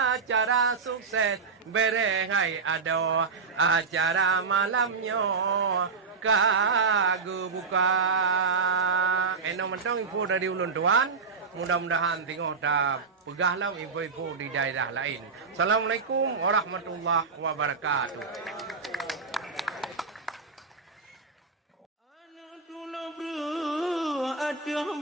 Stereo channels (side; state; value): left; quieter; 4.8 dB